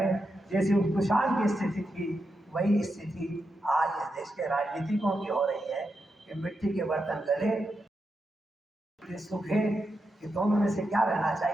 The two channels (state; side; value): normal; both; correlation 0.86